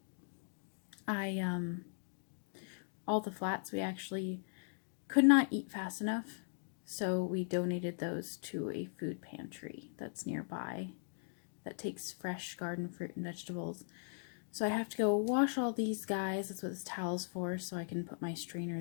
all the flats we actually could not eat fast enough, so we donated those to a food pantry that's nearby that takes fresh garden fruit and vegetables. So I have to go wash all these guys. That's what this towel's for, so I can put my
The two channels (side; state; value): right; silent; digital silence